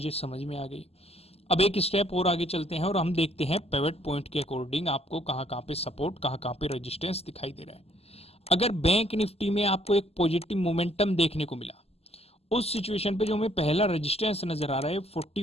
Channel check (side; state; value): right; late; 0.29 ms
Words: समझ में आ गई। अब एक स्टेप और आगे चलते हैं और हम देखते हैं पिवट पॉइंट के अकॉर्डिंग आपको कहां पे सपोर्ट, कहां पे रेजिस्टेंस दिखाई दे रहा है। अगर बैंक निफ्टी में आपको एक पॉजिटिव मोमेंटम देखने को मिला, उस सिचुएशन पे जो हमें पहला रेजिस्टेंस नजर आ रहा है